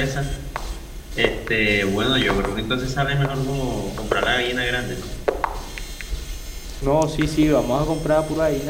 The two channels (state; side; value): identical; both; correlation 1.00